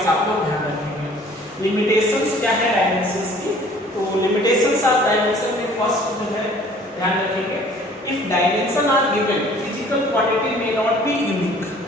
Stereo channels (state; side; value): normal; both; correlation 0.53